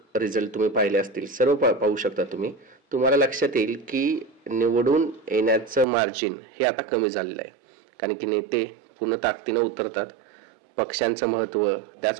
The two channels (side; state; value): left; drops out; at 5.9 s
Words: रिझल्ट तुम्ही पाहिले असतील, सर्व पाहू शकता तुम्ही. तुम्हाला लक्षात येईल की निवडून येण्याचं मार्जिन हे आता कमी झालेलं आहे, कारण की नेते पूर्ण ताकदीनं उतरतात. पक्षांचं महत्त्व,